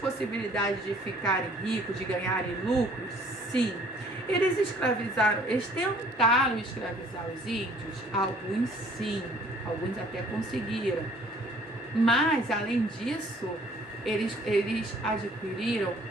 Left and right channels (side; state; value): both; normal; correlation 0.56